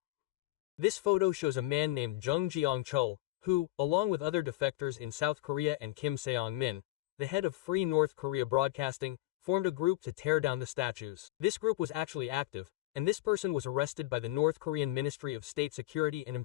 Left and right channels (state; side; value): quieter; right; 17.7 dB